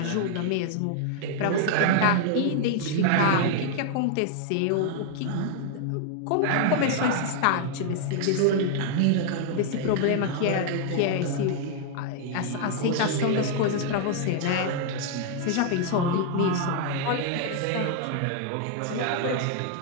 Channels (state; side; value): different; both; correlation 0.00